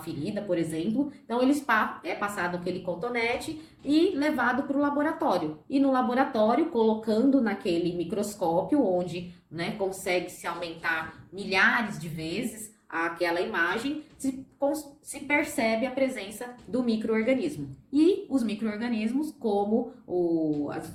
por exemplo. Então, é passado aquele cotonete e levado para o laboratório. E no laboratório, colocando naquele microscópio, onde, né, consegue-se aumentar milhares de vezes aquela imagem, se percebe a presença do micro-organismo. E os micro-organismos, como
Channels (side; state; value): both; identical; correlation 1.00